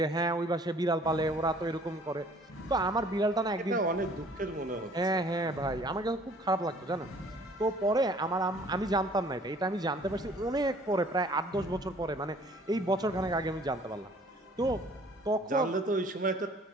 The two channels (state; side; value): normal; both; correlation 0.55